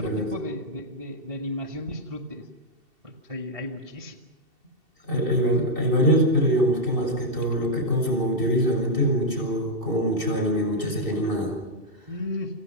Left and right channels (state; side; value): late; left; 2.7 ms